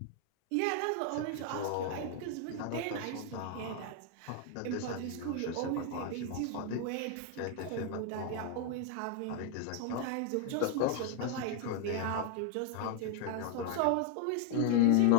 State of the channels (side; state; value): both; different; correlation 0.00